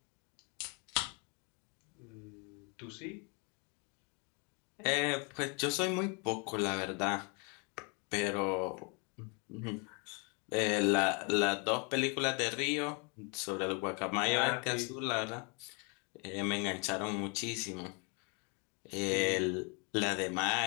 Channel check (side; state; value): right; quieter; 34.0 dB